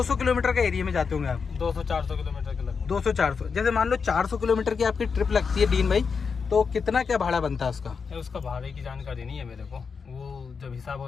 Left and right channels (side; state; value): right; quieter; 5.6 dB